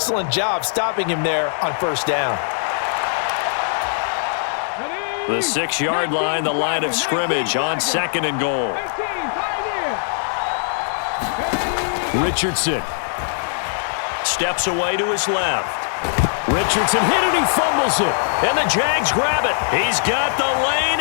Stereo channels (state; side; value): silent; right; digital silence